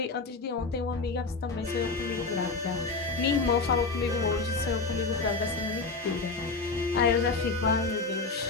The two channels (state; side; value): quieter; right; 4.1 dB